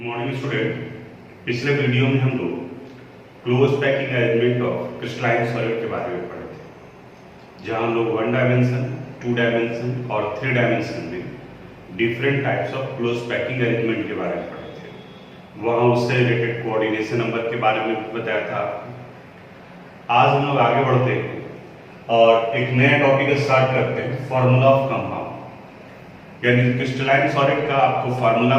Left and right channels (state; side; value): identical; both; correlation 1.00